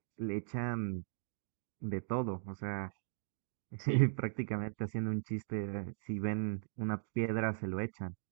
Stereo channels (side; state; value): left; silent; digital silence